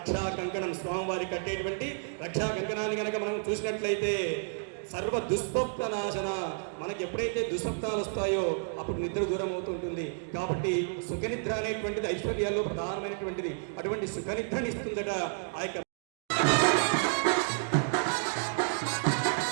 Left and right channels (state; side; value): silent; left; digital silence